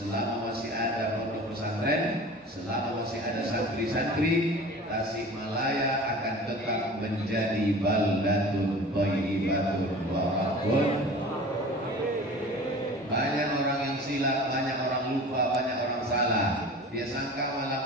masih ada pondok pesantren, selama masih ada santri-santri, Tasikmalaya akan tetap menjadi baldatun thayyibatun barakatun. Banyak orang yang silap, banyak orang lupa, banyak orang salah. Dia sangka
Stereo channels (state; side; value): normal; both; correlation 0.40